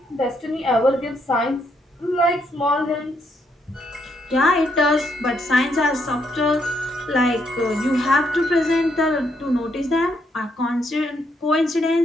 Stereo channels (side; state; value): both; normal; correlation 0.75